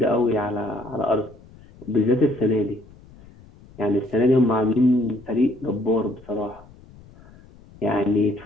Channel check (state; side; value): noise; left; rumble, 23 dB below the sound